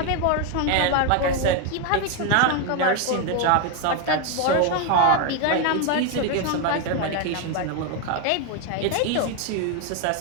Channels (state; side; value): different; both; correlation 0.01